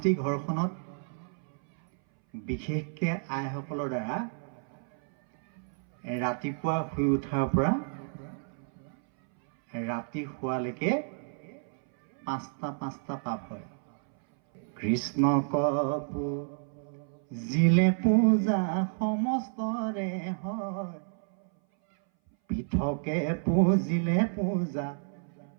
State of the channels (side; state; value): left; silent; 57 dB below the other